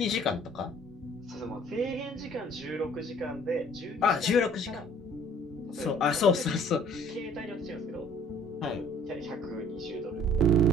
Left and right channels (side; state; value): both; normal; correlation 0.55